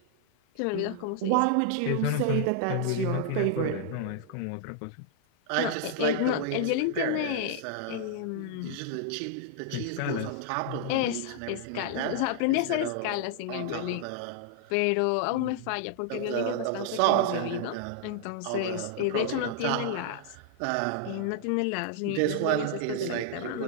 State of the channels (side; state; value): both; different; correlation -0.01